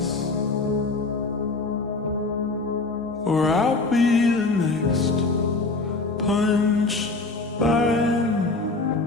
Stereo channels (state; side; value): quieter; right; 3.5 dB